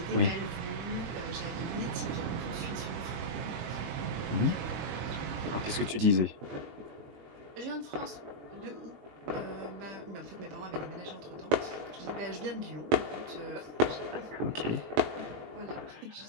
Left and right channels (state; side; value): late; left; 21 ms